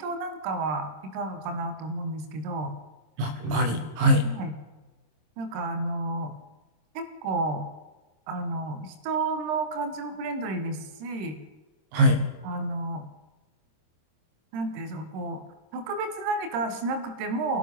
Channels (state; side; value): late; left; 26 ms